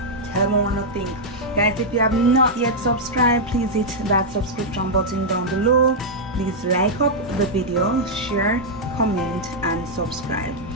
Tell me what you think. Guys, if you have not yet subscribed, please hit that subscription button down below. Please like up the video, share, comment, and subscribe.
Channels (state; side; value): normal; both; correlation -0.05